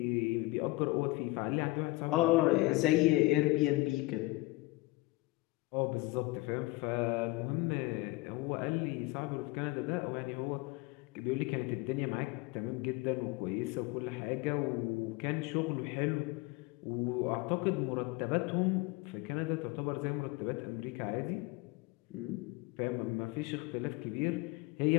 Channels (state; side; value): quieter; right; 21.4 dB